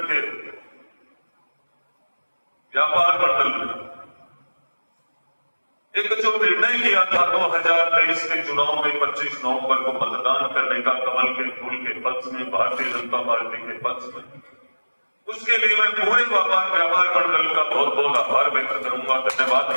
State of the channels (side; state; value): both; inverted; correlation -1.00